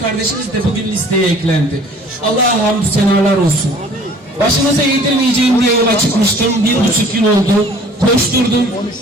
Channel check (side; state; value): both; normal; correlation 0.52